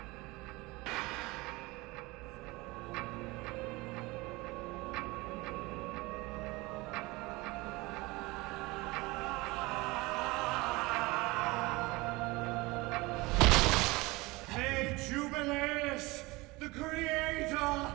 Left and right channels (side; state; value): left; quieter; 22.7 dB